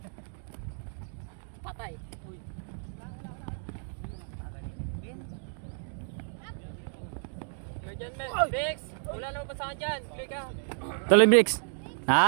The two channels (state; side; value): silent; left; 57 dB below the other